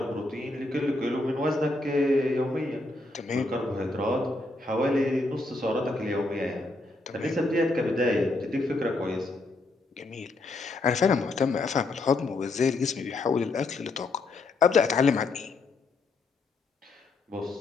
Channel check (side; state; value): right; quieter; 3.1 dB